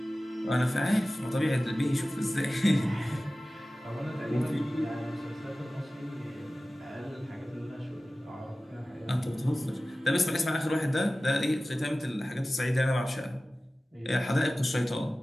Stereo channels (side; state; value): both; normal; correlation 0.96